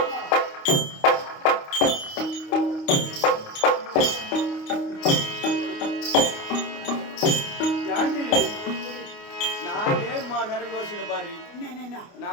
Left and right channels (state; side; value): late; right; 29 ms